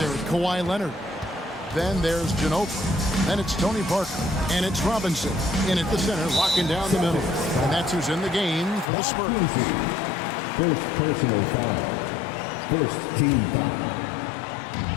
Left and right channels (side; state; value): right; drops out; at 8.8 s